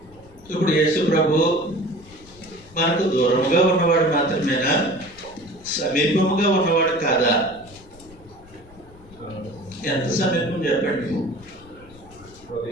ఇప్పుడు యేసు ప్రభు మనకు దూరముగా ఉన్నవాడు మాత్రమేనా, సమీపముగా ఉన్నవాడు కాదా? ఎంత సమీపం చెప్పండి?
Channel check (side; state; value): left; noise; rumble, 23 dB below the sound